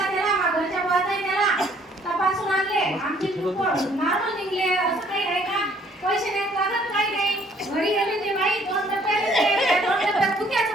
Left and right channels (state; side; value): normal; both; correlation 0.61